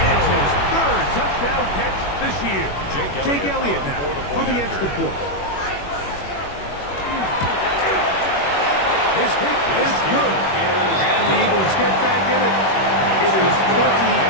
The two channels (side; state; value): right; late; 21 ms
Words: his third touchdown catch this year. Jake Elliott now for the extra point. His kick is good. And the Eagles get back in it. It is